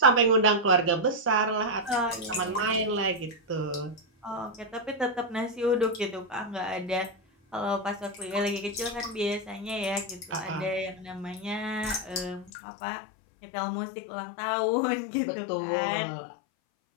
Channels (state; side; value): drops out; right; at 12.5 s